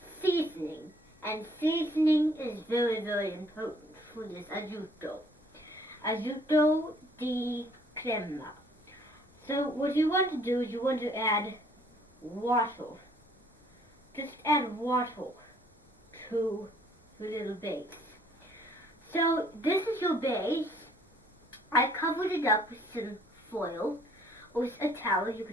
seasoning. And seasoning is very, very important for this azuto. Azuto di crema. So what you want to do is you want to add water. Just add water to the little base. So this is your base. I covered it up with some foil or with a towel. You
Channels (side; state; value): both; normal; correlation 0.60